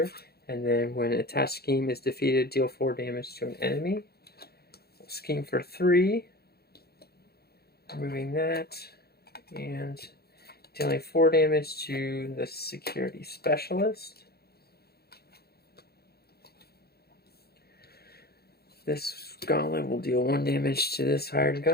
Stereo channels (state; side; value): late; right; 0.46 ms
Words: and then when an attached scheme is defeated, deal 4 damage to an enemy. We'll scheme for 3, removing that, and dealing 4 damage to the security specialist. This gauntlet will deal 1 damage to this hired